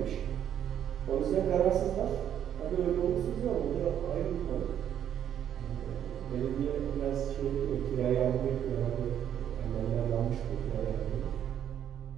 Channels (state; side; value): quieter; left; 9.8 dB